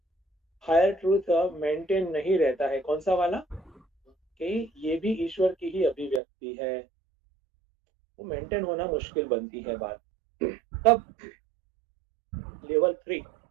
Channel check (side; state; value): left; drops out; at 6.2 s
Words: हायर ट्रूथ मेंटेन नहीं रहता है। कौन सा वाला, कि ये भी ईश्वर की ही अभिव्यक्ति है, वो मेंटेन होना मुश्किल बनती है बात। तब लेवल 3,